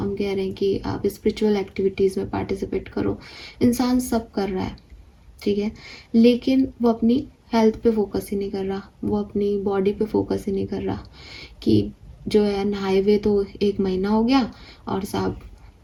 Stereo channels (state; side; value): identical; both; correlation 1.00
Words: कह रहे हैं कि आप स्पिरिचुअल एक्टिविटीज़ में पार्टिसिपेट करो। इंसान सब कर रहा है, ठीक है, लेकिन वो अपनी हेल्थ पे फोकस ही नहीं कर रहा, वो अपनी बॉडी पे फोकस ही नहीं कर रहा कि जो है नहाए हुए तो 1 महीना हो गया और साहब